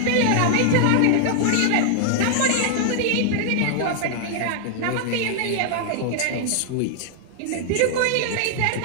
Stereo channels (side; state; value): both; different; correlation -0.01